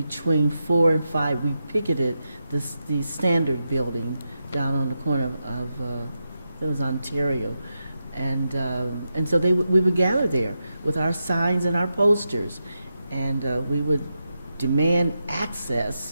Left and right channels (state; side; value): inverted; both; correlation -0.88